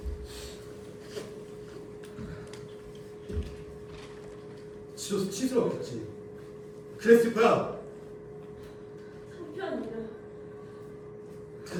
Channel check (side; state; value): both; identical; correlation 1.00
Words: 지로서 치스러웠겠지. 그랬을 거야. 한편입니다.